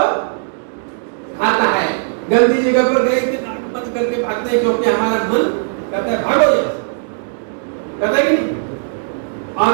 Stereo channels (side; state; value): left; silent; digital silence